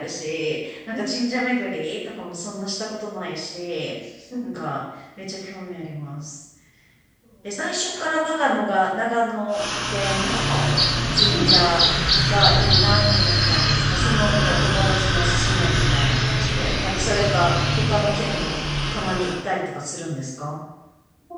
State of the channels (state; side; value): identical; both; correlation 1.00